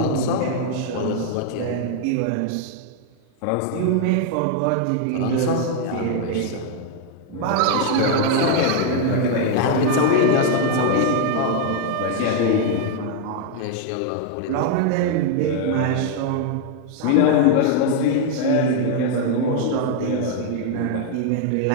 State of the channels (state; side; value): different; both; correlation 0.00